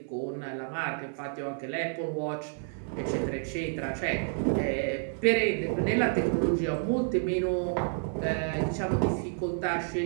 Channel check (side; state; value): left; silent; 57 dB below the other